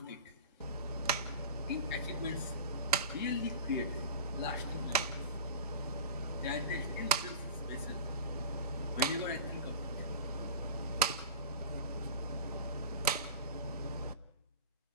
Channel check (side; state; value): both; inverted; correlation -0.34